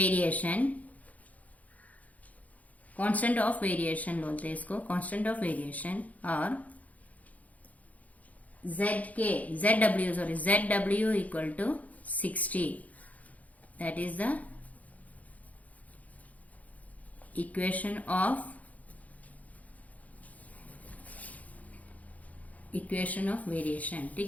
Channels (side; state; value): right; late; 0.073 ms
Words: constant of variation बोलते हैं इसको, कांस्टेंट ऑफ वेरिएशन. और zw equal to 60. That is the equation of variation.